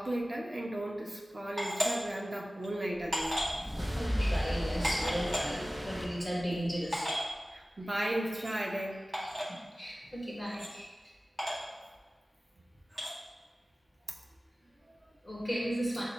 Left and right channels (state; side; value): normal; both; correlation 0.97